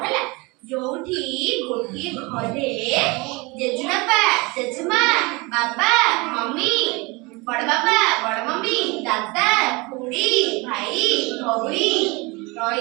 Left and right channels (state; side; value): quieter; left; 25.9 dB